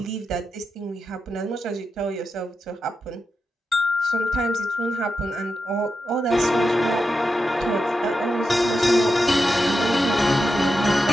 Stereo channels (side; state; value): both; normal; correlation 0.88